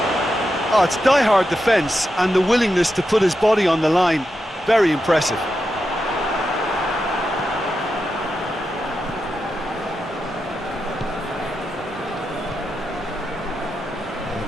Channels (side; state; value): both; normal; correlation 0.88